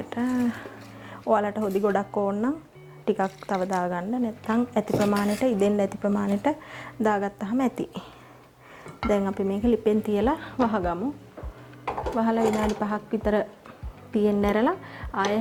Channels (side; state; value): both; identical; correlation 1.00